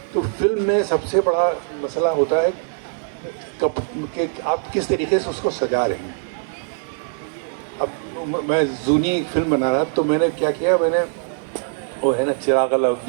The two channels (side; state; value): left; silent; digital silence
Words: तो फिल्म में सबसे बड़ा मसला होता है कि आप किस तरीके से उसको सजा रहे हैं। अब मैं जूनी फिल्म बना रहा तो मैंने क्या किया, मैंने वो है ना चिराग